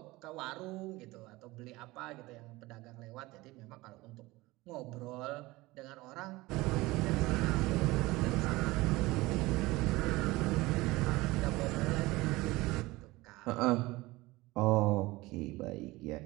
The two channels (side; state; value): left; quieter; 20.5 dB